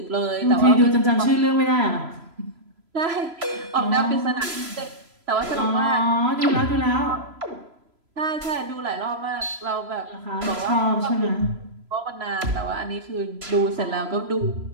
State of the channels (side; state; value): left; late; 3.0 ms